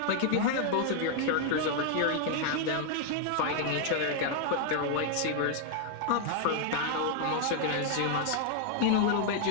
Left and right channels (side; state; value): both; different; correlation 0.00